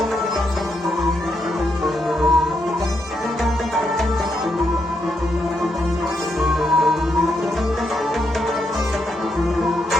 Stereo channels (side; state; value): both; normal; correlation 0.80